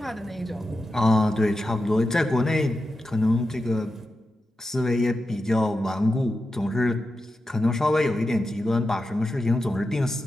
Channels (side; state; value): both; normal; correlation 0.90